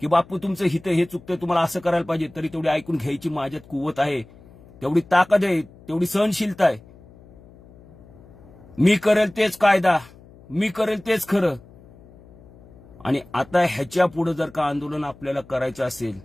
की बापू तुमचं हित हे चुकतंय, तुम्हाला असं करायला पाहिजे, तरी तेवढी ऐकून घ्यायची माझ्यात कुवत आहे, तेवढी ताकद आहे, तेवढी सहनशीलता आहे. मी करेल तेच कायदा, मी करेल तेच खरं. आणि आता ह्याच्या पुढे जर का आंदोलन आपल्याला करायचं असेल,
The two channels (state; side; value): noise; left; hum, 23 dB below the sound